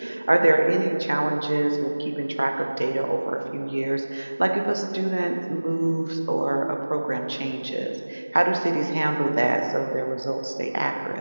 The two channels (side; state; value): both; inverted; correlation -1.00